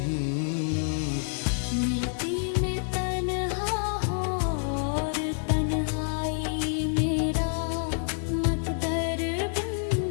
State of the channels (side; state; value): right; silent; 57 dB below the other